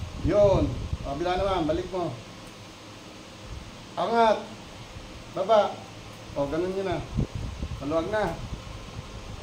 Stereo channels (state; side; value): identical; both; correlation 1.00